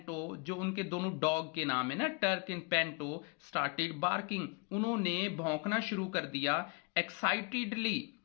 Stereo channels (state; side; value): quieter; right; 32.1 dB